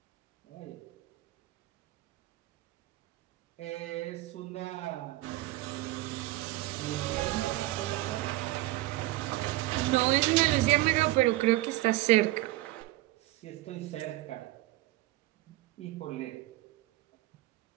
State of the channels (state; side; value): quieter; left; 18.1 dB